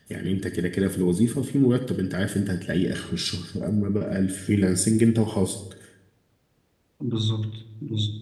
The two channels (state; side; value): identical; both; correlation 1.00